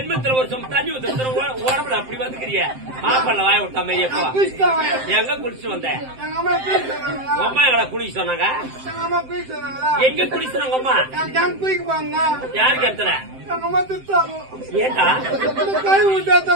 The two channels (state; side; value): late; left; 7.7 ms